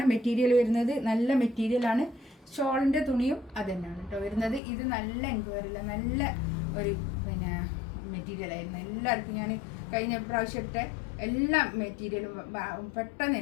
മെറ്റീരിയൽ വരുന്നത്, നല്ല മെറ്റീരിയലാണ്. ഷോളിൻ്റെ തുണിയും അത് തന്നെയാണ് കേട്ടോ വരുന്നത്. ഇത് നല്ല എൻക്വയറില്ല, നല്ല ഒരു മെറ്റീരിയലായിരുന്നു. എല്ലാവർക്കും ഞാൻ കഴിഞ്ഞ പ്രാവശ്യം ഇട്ട എല്ലാ മെറ്റീരിയലും പെട്ടെന്ന്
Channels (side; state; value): right; drops out; at 4.6 s